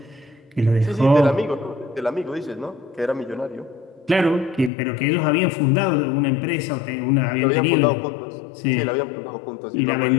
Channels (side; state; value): right; drops out; at 4.7 s